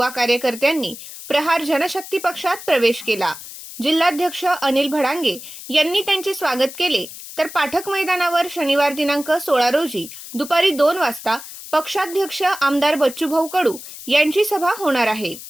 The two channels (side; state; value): left; noise; hiss, 13 dB below the sound